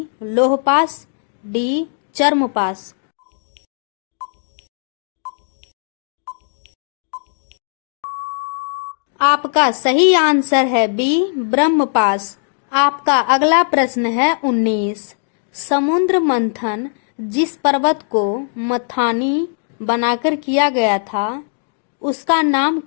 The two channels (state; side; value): silent; right; digital silence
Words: लोहपास, डी चर्मपास। आपका सही आंसर है बी ब्रह्मपास। आपका अगला प्रश्न है 19। समुद्र मंथन जिस पर्वत को मथानी बनाकर किया गया था उसका नाम